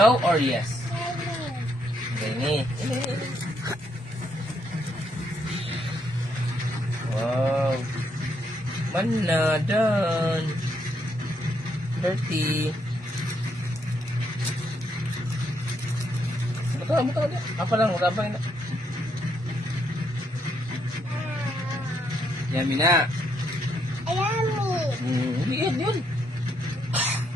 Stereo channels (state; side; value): normal; both; correlation 0.75